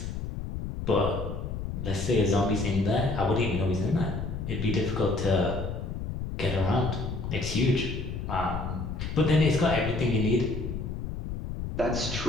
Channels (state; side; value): noise; left; rumble, 5 dB below the sound